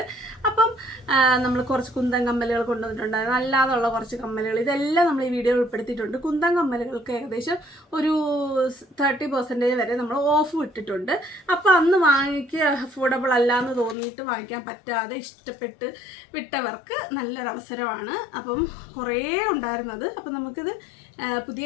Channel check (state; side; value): drops out; right; at 14.0 s